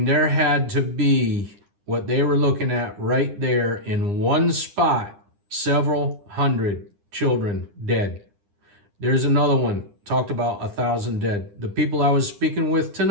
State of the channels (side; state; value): left; late; 9.9 ms